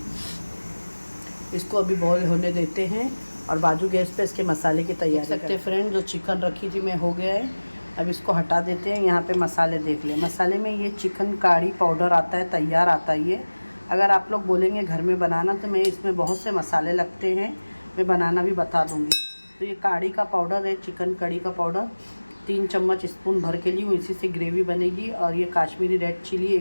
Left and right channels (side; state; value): both; inverted; correlation -1.00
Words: इसको अभी बॉईल होने देते हैं और बाजू गैस पे इसके मसाले की तैयारी सकते हैं। फ्रेंड, जो चिकन रखी थी मैं हो गया है। अब इसको हटा देते हैं। यहाँ पे मसाले देख लें। मसाले में ये चिकन कढ़ी पाउडर आता है, तैयार आता है ये। अगर आप लोग बोलेंगे घर में बनाना तो मैं इसमें बहुत से मसाले लगते हैं, मैं बनाना भी बता दूँगी। तो ये कढ़ी का पाउडर है, चिकन कढ़ी का पाउडर 3 चम्मच स्पून भर के लिए हूँ, इसी से ग्रेवी बनेगी। और ये काश्मीरी रेड चिली